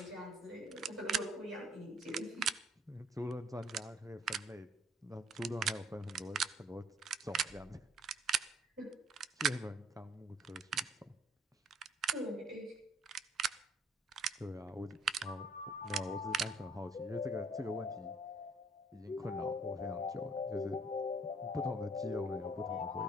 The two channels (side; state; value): both; normal; correlation 0.61